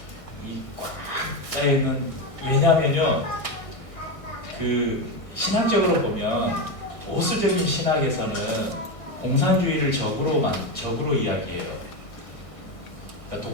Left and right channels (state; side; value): late; right; 1.6 ms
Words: 이 꽉 짜여있는, 왜냐하면요, 그 신학적으로 보면 보수적인 신학에서는 공산주의를 적으로 이야기해요. 그러니까